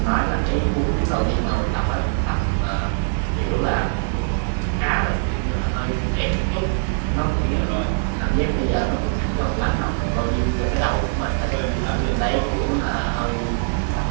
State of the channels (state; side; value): silent; left; digital silence